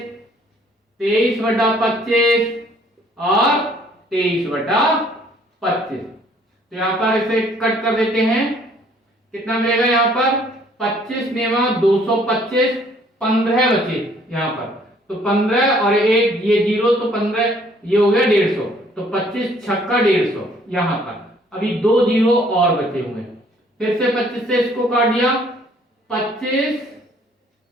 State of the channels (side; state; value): both; normal; correlation 0.61